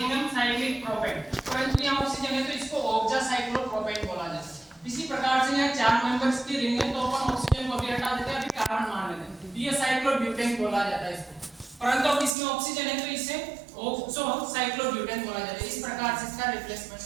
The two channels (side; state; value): left; drops out; at 12.3 s